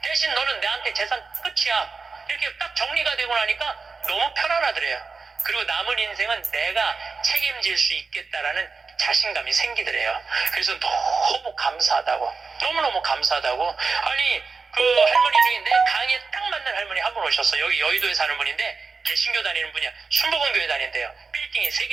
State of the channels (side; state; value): left; quieter; 4.6 dB